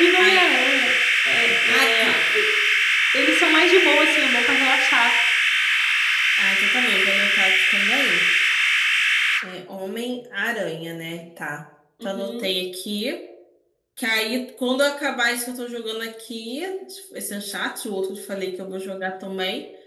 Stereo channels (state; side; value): identical; both; correlation 1.00